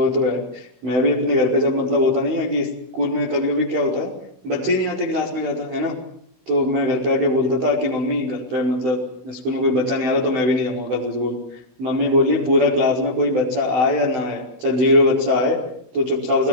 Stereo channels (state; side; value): late; left; 16 ms